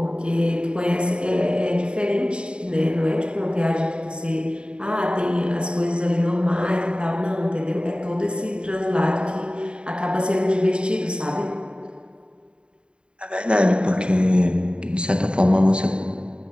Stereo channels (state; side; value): late; left; 0.053 ms